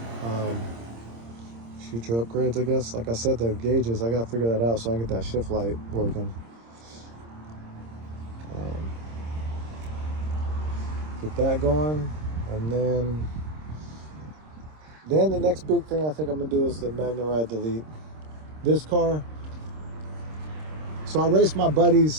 Future upgrades, I guess. Like I said, the gauges, I got to figure that out so I can get that shift light working. Get that going. And then the next big thing I think I'm going to do is the Magna Ride Delete. This car, so I raced my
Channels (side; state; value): left; late; 26 ms